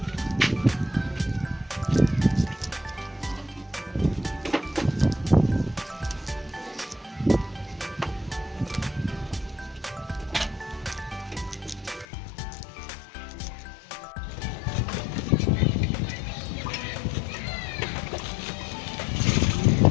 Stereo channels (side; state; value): right; drops out; at 12.1 s